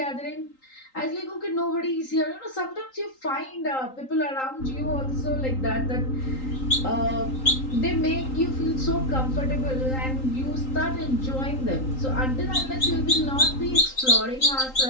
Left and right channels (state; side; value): late; right; 3.8 ms